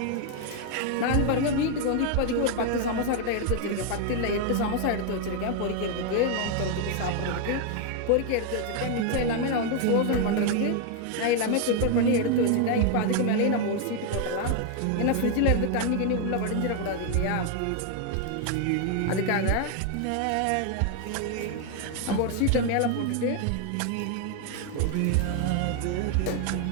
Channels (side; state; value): both; different; correlation 0.00